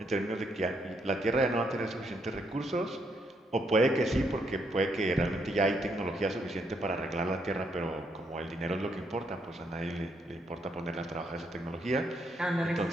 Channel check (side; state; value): both; normal; correlation 0.75